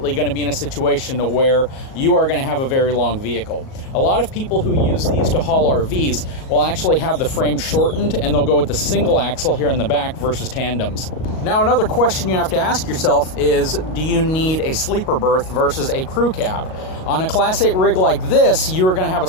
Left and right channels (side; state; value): right; late; 38 ms